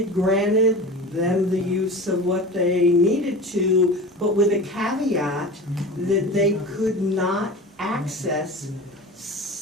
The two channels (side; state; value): both; normal; correlation 0.33